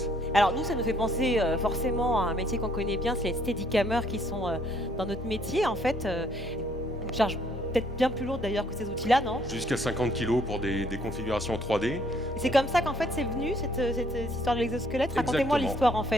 Alors nous, ça nous fait penser forcément à un métier qu'on connaît bien, c'est les steadicamers qui sont dans notre métier. En fait, une charge peut-être bien plus lourde d'ailleurs que ces outils-là, non? Jusqu'à 50 kg pour des configurations 3D. Et c'est comme ça qu'en fait c'est venu, cette histoire de l'exosquelette. Racontez-moi l'histoire en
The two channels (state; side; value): normal; both; correlation 0.65